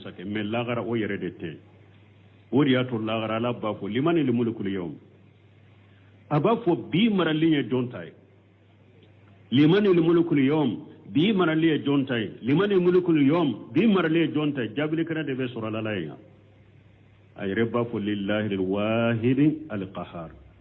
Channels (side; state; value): both; identical; correlation 1.00